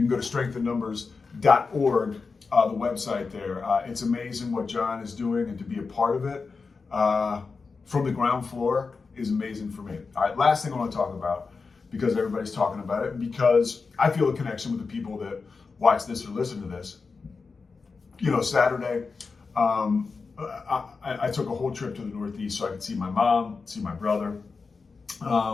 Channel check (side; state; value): right; quieter; 4.6 dB